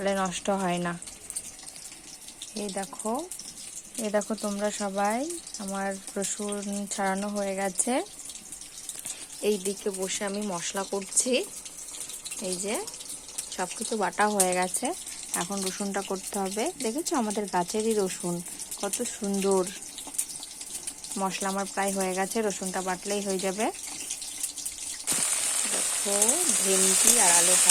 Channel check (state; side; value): identical; both; correlation 1.00